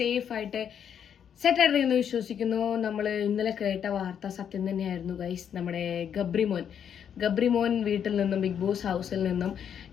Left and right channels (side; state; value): right; quieter; 8.4 dB